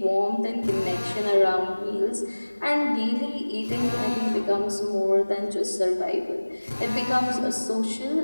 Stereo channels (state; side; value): inverted; both; correlation -1.00